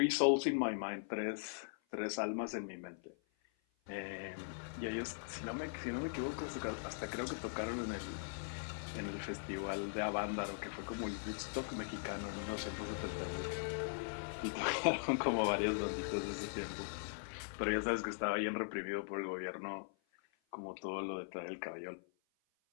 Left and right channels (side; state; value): right; silent; 51 dB below the other